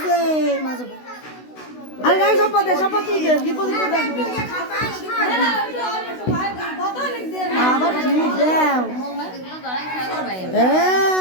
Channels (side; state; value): right; late; 16 ms